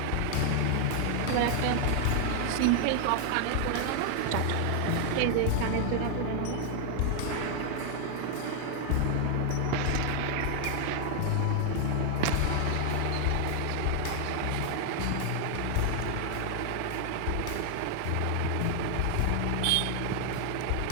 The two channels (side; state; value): both; different; correlation 0.00